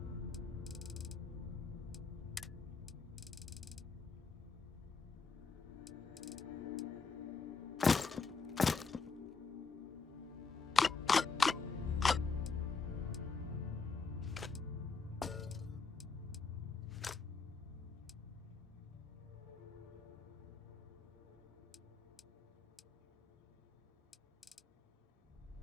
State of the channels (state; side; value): quieter; right; 4.7 dB